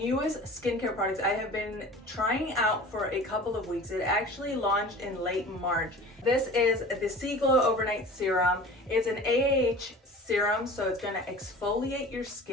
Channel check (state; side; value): normal; both; correlation 0.40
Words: skincare products I have been trying out for a couple of weeks. It actually launched in late March. This is the Seaglow Overnight Serum. It's an AAH serum, so it's going to exfoliate your